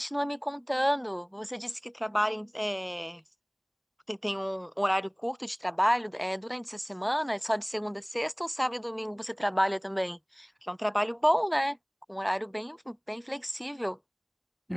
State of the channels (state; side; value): identical; both; correlation 1.00